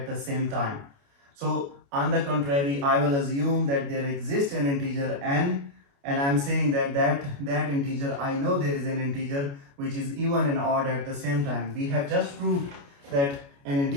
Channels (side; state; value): left; late; 29 ms